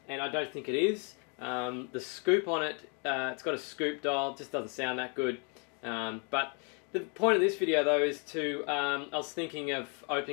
and I don't think it is. The scoop on it, it's got a scoop dial, it just doesn't sound that good. But the point of this video though is to, I was thinking of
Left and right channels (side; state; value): right; quieter; 35.8 dB